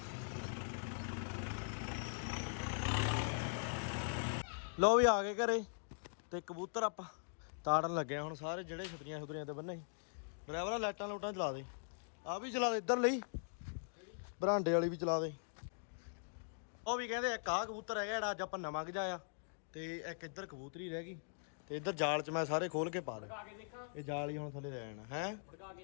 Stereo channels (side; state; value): right; silent; digital silence